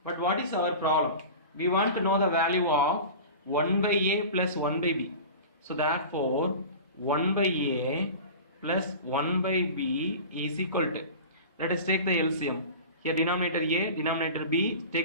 But what is our problem? We want to know the value of 1 by a plus 1 by b. So therefore 1 by a plus 1 by b is equal to, Let us take the LCM. Here denominator A, denominator B.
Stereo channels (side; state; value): both; inverted; correlation -0.34